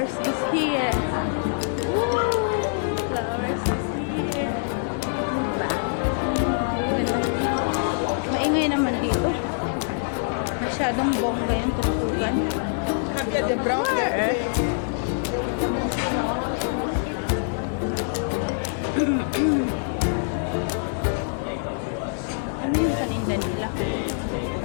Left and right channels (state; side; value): silent; right; digital silence